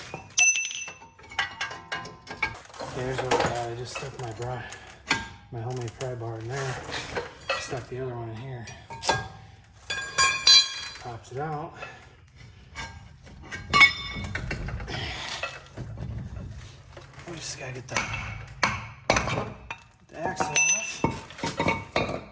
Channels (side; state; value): both; identical; correlation 1.00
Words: Here's what I got. I just stuck my homemade pry bar in there. Stuck the other one in here. Pops it out. We just gotta get the axle off.